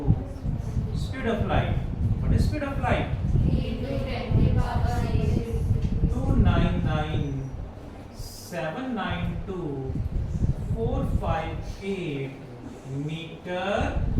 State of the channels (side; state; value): both; identical; correlation 1.00